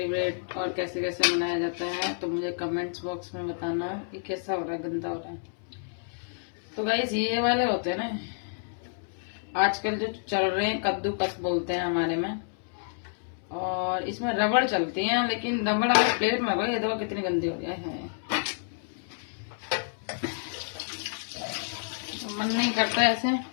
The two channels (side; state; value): right; silent; 59 dB below the other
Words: और कैसे कैसे मनाया जाता है, तो मुझे कमेंट्स बॉक्स में बताना कि कैसा हो रहा है, गंदा हो रहा है। तो गाइस, ये वाले होते हैं ना आजकल जो चल रहे हैं, कद्दूकस बोलते हैं हमारे में। और इसमें रबड़ चलती है, लेकिन रबड़ अगर प्लेट में ये देखो कितनी गंदी हो जाए है। मन नहीं करता ऐसे,